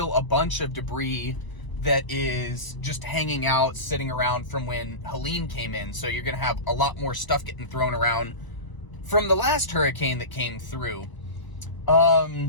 a bunch of debris that is just hanging out, sitting around from when Helene came in. So you're going to have a lot more stuff getting thrown around from the last hurricane that came through.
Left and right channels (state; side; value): late; right; 1.0 ms